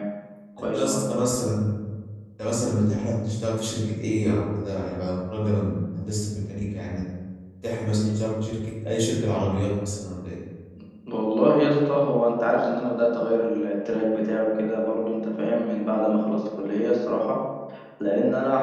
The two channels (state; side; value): identical; both; correlation 1.00